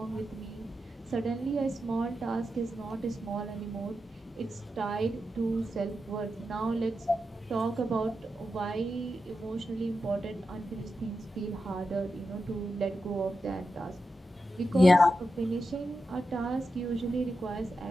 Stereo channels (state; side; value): normal; both; correlation 0.89